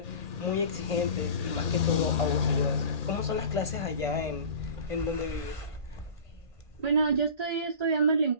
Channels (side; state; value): left; late; 1.8 ms